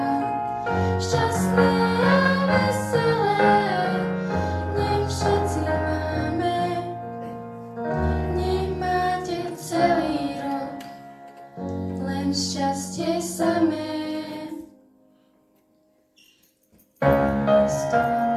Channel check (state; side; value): identical; both; correlation 1.00